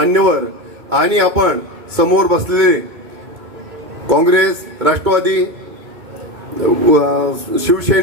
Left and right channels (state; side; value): late; left; 2.2 ms